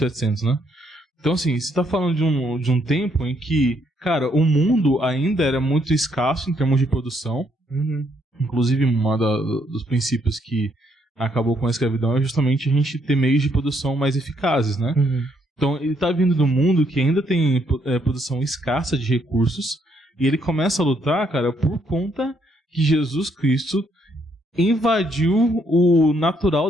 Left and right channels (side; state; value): both; normal; correlation 0.72